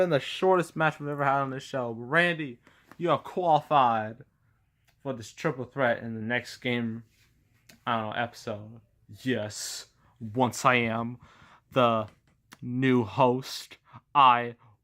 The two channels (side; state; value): both; identical; correlation 1.00